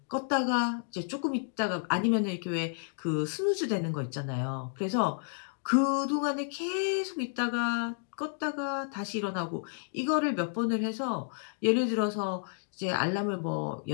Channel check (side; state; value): right; silent; digital silence